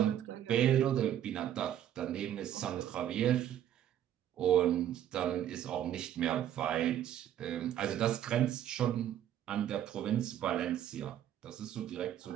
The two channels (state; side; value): quieter; left; 11.0 dB